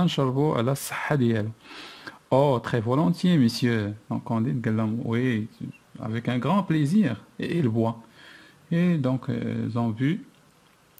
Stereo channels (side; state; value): both; identical; correlation 1.00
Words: نشربوا على الصحة ديالو. Oh, très volontiers, monsieur. Donc Candide قال لهم oui, avec un grand plaisir. Et il boit. Et donc ils ont vu